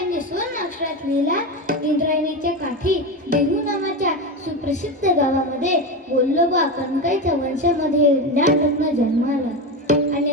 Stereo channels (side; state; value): both; normal; correlation 0.18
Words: स्वर्ण अक्षरात लिहिला इंद्रायणीच्या काठी देहू नावाच्या सुप्रसिद्ध गावामध्ये वल्लोबा कणकाईच्या वंशामध्ये ज्ञानरत्न जन्माला